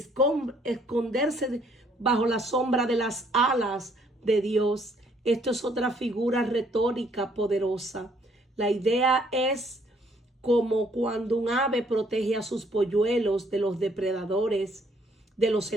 bajo la sombra de las alas de Dios. Esto es otra figura retórica poderosa. La idea es como cuando un ave protege a sus polluelos de los depredadores, de los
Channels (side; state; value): both; normal; correlation 0.65